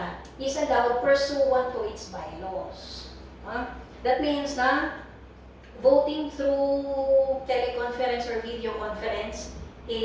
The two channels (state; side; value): identical; both; correlation 1.00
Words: is allowed pursuant to its bylaws. That means na voting through teleconference or video conference